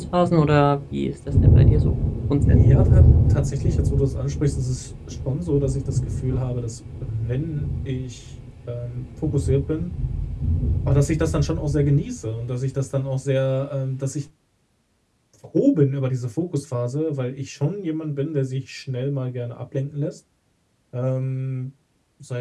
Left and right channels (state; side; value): identical; both; correlation 1.00